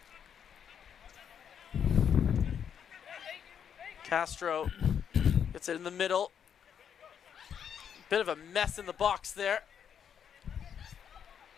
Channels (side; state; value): right; quieter; 8.1 dB